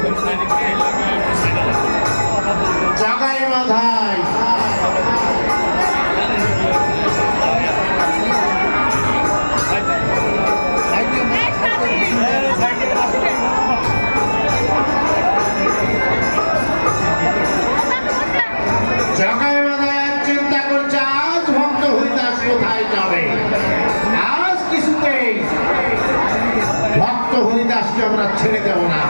জগাই মাধায় জগাই মাধায় চিন্তা করছে আজ ভক্ত হরিদাস কোথায় যাবে। আজ কিছুতেই ভক্ত হরিদাসকে আমরা ছেড়ে দেব না।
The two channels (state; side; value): inverted; both; correlation -1.00